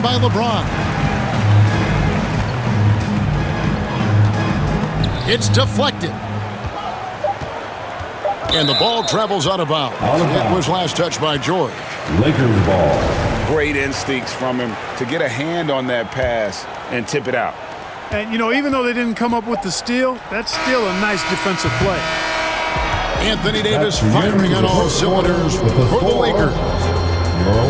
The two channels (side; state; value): both; identical; correlation 1.00